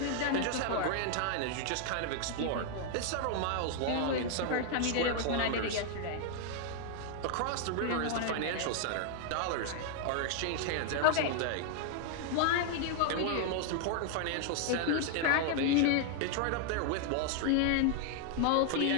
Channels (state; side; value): different; both; correlation 0.00